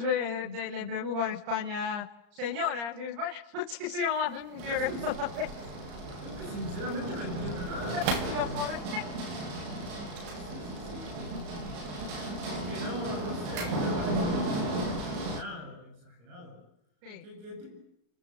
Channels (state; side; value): late; left; 34 ms